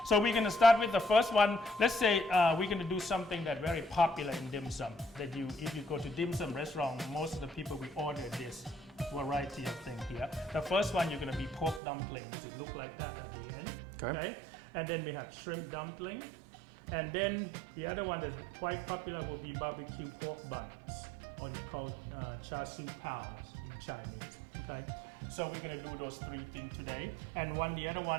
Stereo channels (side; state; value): left; drops out; at 11.8 s